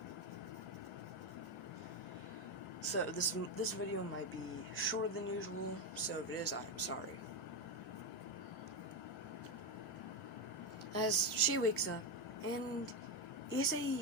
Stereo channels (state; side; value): normal; both; correlation 0.10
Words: So, this video might be shorter than usual, so if it is, I am sorry. As she wakes up, and